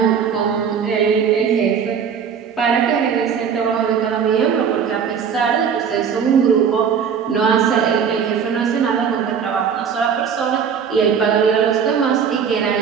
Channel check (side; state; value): left; quieter; 7.1 dB